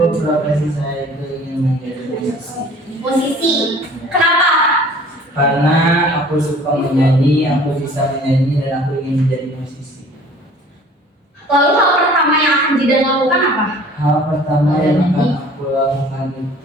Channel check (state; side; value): normal; both; correlation 0.50